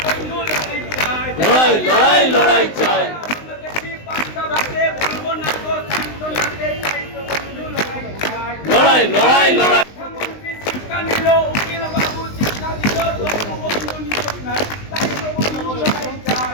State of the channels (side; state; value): right; late; 19 ms